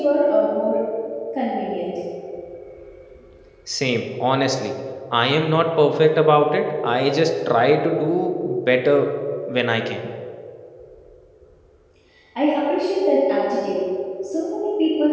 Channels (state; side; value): identical; both; correlation 1.00